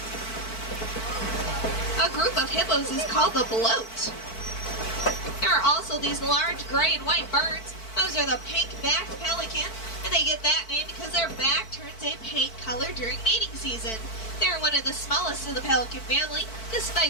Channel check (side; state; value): right; late; 4.5 ms